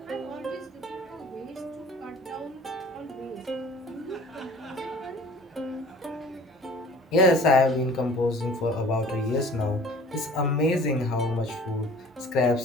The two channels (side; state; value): both; normal; correlation 0.48